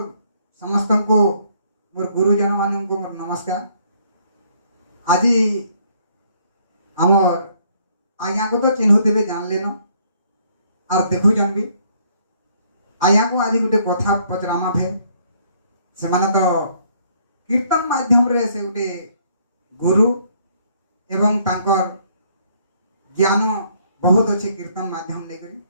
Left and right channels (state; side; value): inverted; both; correlation -0.66